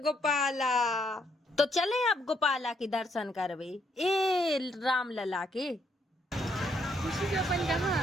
तो चले अब गोपाला के दर्शन करवे, ए राम लला के। खुशी जो अपन कहाँ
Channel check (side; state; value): both; normal; correlation 0.73